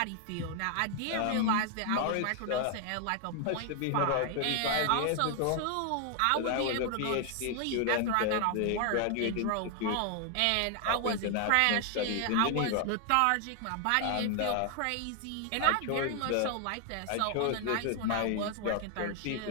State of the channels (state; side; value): different; both; correlation 0.00